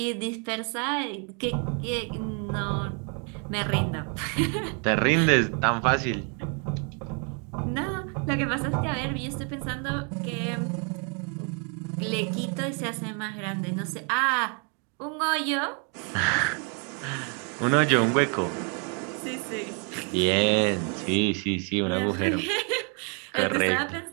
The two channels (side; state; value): left; quieter; 37.7 dB